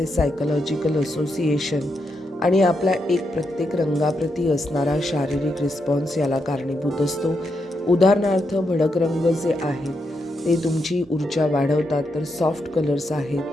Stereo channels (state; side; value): normal; both; correlation 0.82